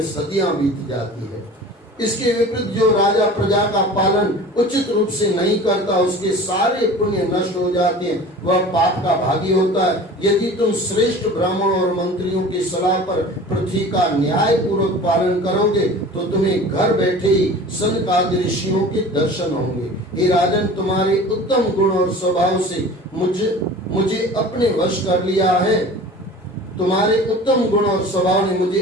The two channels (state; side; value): normal; both; correlation 0.40